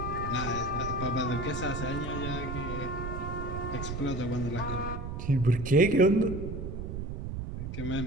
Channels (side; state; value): right; noise; rumble, 5 dB below the sound